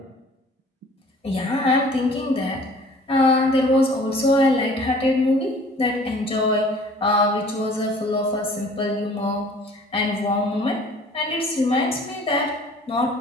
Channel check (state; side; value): normal; both; correlation 0.50